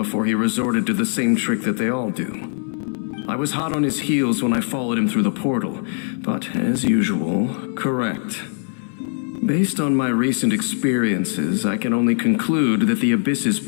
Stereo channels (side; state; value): right; silent; 61 dB below the other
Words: he resorted to the same trick that they all do. I was hot on his heels when I followed him through the portal, but as usual, correct. Based on my recent experiences, I can only conclude that the Abyss's